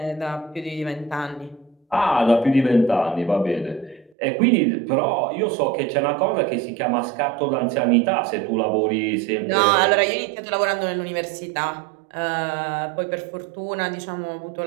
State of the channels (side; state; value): left; drops out; at 4.1 s